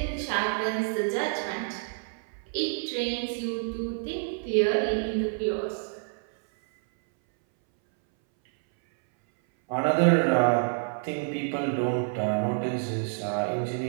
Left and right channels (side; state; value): left; silent; 60 dB below the other